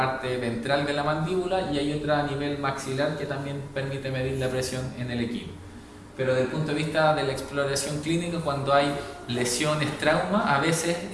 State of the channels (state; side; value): identical; both; correlation 1.00